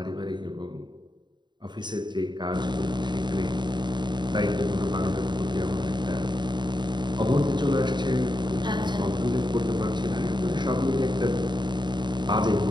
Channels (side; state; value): left; late; 0.22 ms